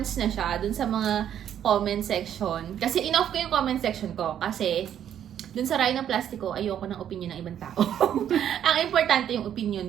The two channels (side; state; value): left; quieter; 9.9 dB